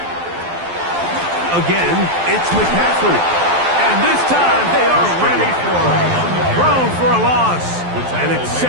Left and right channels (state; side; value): late; left; 12 ms